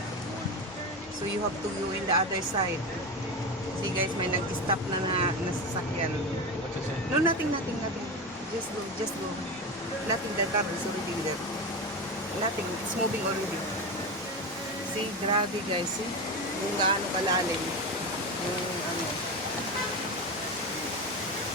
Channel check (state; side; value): normal; both; correlation 0.21